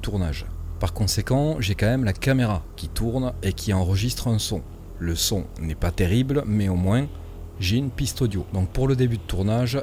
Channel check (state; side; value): identical; both; correlation 1.00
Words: tournage. Par conséquent, j'ai quand même la caméra qui tourne et qui enregistre un son. Le son n'est pas terrible, mais au moins j'ai une piste audio. Donc pour le début de tournage